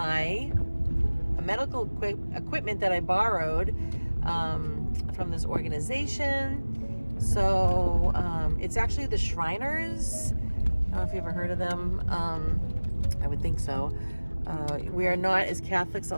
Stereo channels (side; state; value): both; inverted; correlation -1.00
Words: medical equipment that I borrowed from this organization. So it's actually the Shriners. I don't know if you've ever heard of them. I would think so. We are not, as Catholics,